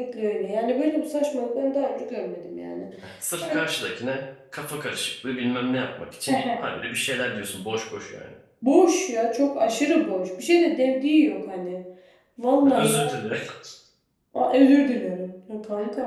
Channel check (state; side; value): identical; both; correlation 1.00